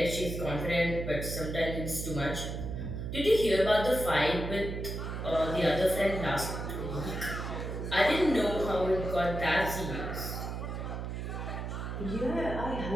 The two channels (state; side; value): noise; right; hum, 5 dB below the sound